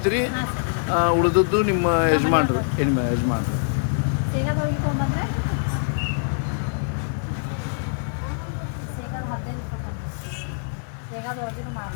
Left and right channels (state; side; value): silent; right; digital silence